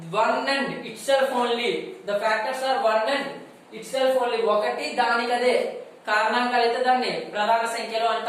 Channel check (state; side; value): identical; both; correlation 1.00